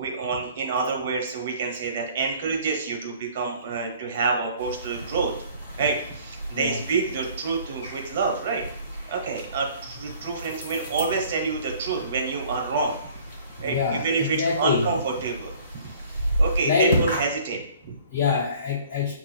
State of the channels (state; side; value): inverted; both; correlation -0.53